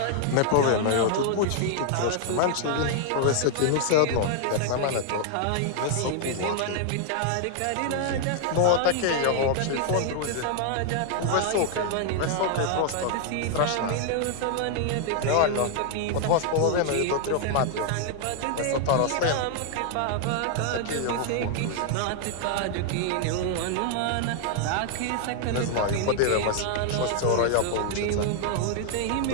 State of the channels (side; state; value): both; different; correlation 0.00